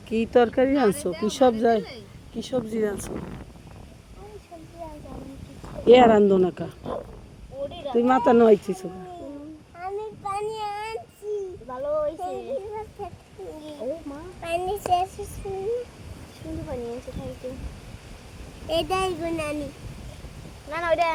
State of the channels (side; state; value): both; identical; correlation 1.00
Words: কি তরকারি রানছো কি সবজি রানছো এ রান্ধো না কা তুই মাথা নইছিস আমি পানি আনছি ভালো হইছে ও মা পানি শেষ সুন্দর পানি আছে খাইতে এটাই গুনানি না না ওইটা